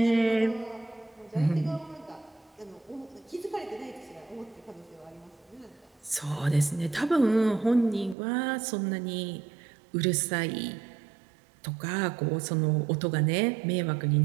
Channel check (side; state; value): left; drops out; at 8.2 s